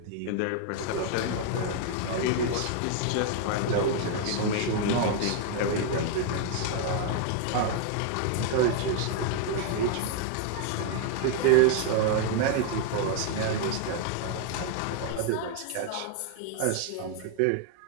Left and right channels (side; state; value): both; different; correlation 0.00